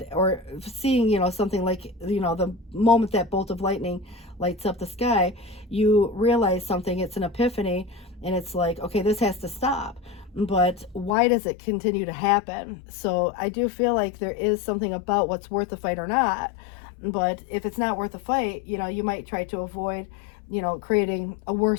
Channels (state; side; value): drops out; right; at 11.2 s